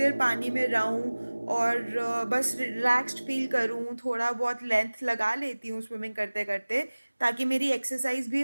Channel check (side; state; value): both; inverted; correlation -1.00